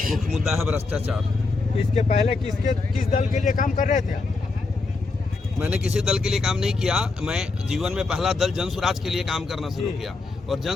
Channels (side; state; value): right; quieter; 3.8 dB